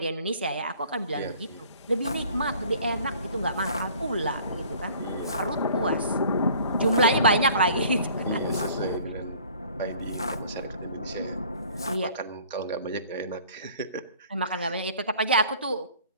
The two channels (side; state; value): both; inverted; correlation -0.52